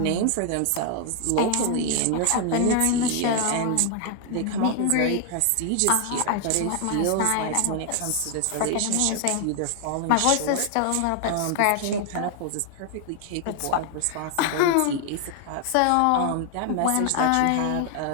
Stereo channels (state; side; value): different; both; correlation 0.00